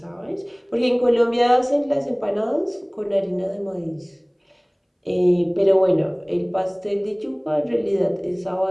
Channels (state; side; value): identical; both; correlation 1.00